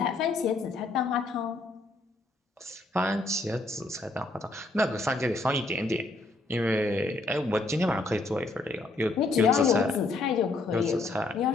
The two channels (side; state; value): right; quieter; 3.1 dB